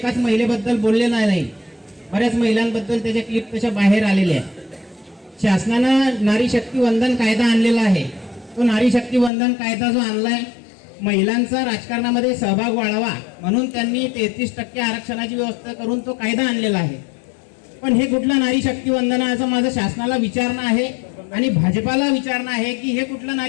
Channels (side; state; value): right; drops out; at 9.3 s